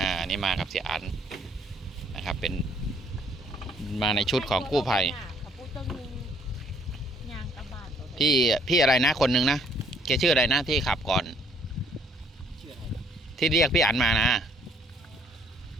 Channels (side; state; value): both; normal; correlation 0.64